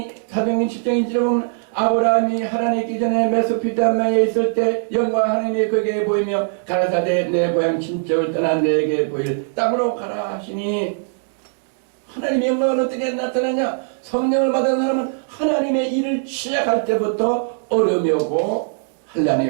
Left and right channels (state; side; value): silent; left; digital silence